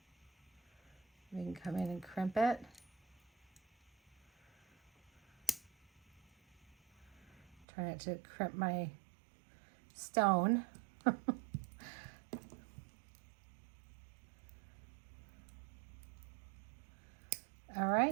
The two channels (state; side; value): drops out; left; at 7.7 s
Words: We can come in and crimp it. Try not to crimp my stone. All